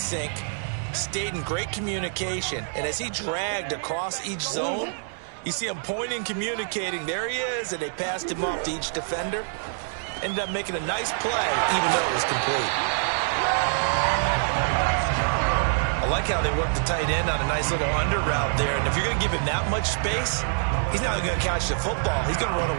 stayed in great communication, and as he dragged across each zone, you see him pointing, communicating. There he is, and they passed him off to each defender. Ended up making a nice play, even though it was complete. I like how they worked the tight end on a nice little under route there. And if you're going to give him that much space, he's not going to catch the football. He's going to run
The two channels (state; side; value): silent; left; 61 dB below the other